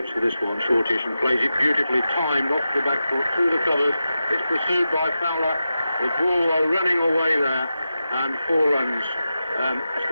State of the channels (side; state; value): both; inverted; correlation -0.91